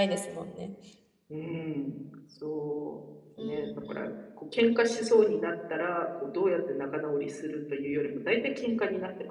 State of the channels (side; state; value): both; identical; correlation 1.00